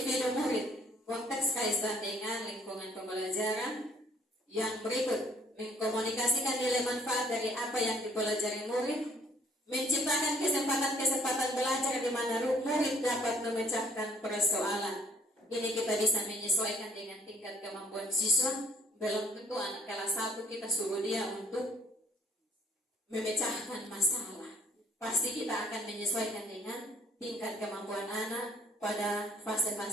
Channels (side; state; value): both; normal; correlation 0.60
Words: murid. Konteks kaitan dengan lingkungan pembelajaran. Yang berikut, mengkomunikasikan nilai manfaat dari apa yang dipelajari murid. Menciptakan kesempatan-kesempatan belajar di mana murid dapat memecahkan persoalan. Ini kita bisa menyesuaikan dengan tingkat kemampuan siswa. Belum tentu anak kelas 1 kita suruh dia untuk memecahkan masalah. Pasti kita akan menyesuaikan dengan tingkat kemampuan anak pada